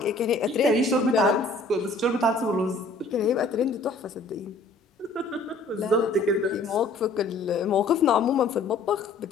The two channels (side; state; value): right; quieter; 3.2 dB